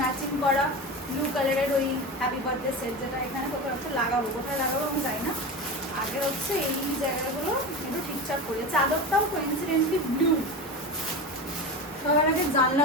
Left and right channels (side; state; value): both; normal; correlation 0.25